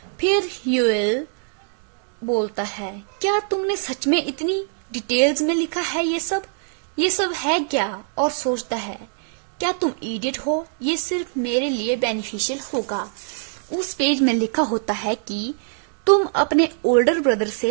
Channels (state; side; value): silent; left; 62 dB below the other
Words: फिर यूएल बोलता है, क्या तुमने सच में इतनी डिटेल्स में लिखा है ये सब है क्या? और सोचता है, क्या तुम इडियट हो? ये सिर्फ मेरे लिए बेनिफिशियल होगा। उस पेज में लिखा होता है कि तुम अपने ओल्डर ब्रदर